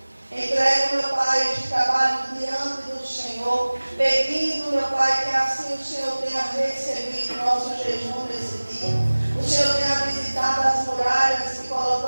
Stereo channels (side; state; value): both; inverted; correlation -1.00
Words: Entrego, meu Pai, este trabalho diante do Senhor, pedindo, meu Pai, que assim o Senhor tenha recebido nosso jejum nesse dia. O Senhor tenha visitado as muralhas que